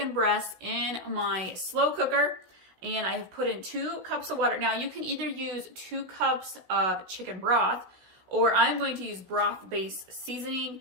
breasts in my slow cooker. And I have put in 2 cups of water. Now you can either use 2 cups of chicken broth, or I'm going to use broth-based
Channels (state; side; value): late; left; 16 ms